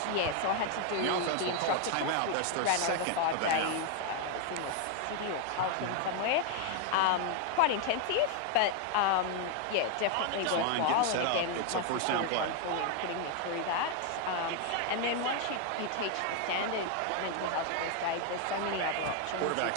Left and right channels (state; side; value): different; both; correlation 0.01